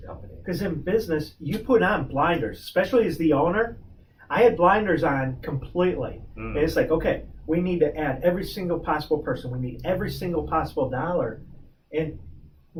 company. Because in business, you put on blinders, especially as the owner. I had blinders on completely. And it's like, okay, we need to add every single possible person. We need every single possible dollar. And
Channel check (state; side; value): identical; both; correlation 1.00